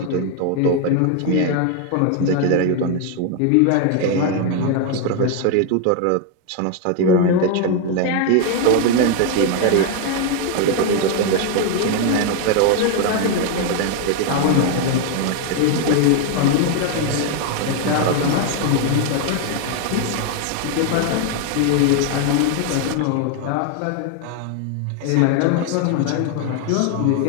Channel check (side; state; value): both; different; correlation 0.01